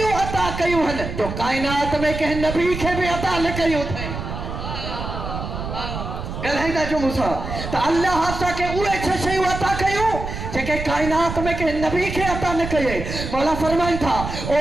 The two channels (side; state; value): right; noise; rumble, 6 dB below the sound